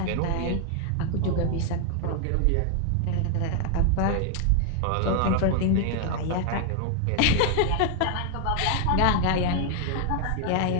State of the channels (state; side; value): different; both; correlation 0.00